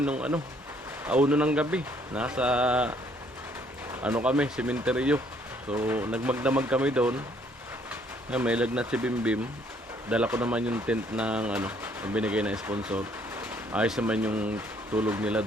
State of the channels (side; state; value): both; normal; correlation 0.65